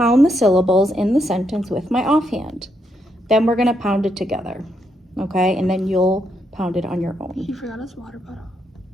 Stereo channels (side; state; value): both; normal; correlation 0.78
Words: the syllables in the sentence with my offhand. Then we're going to pound it together, okay? And then you'll pound it on your own. He forgot his water bottle.